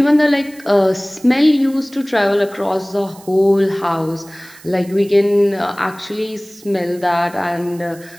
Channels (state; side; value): noise; right; hiss, 23 dB below the sound